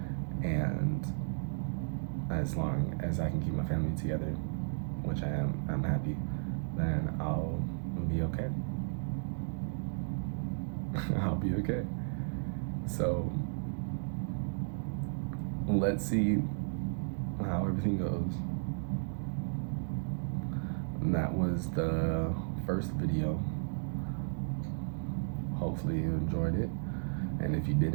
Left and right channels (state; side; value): silent; left; 55 dB below the other